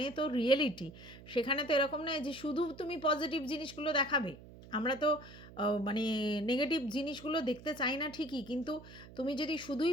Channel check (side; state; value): right; noise; hum, 18 dB below the sound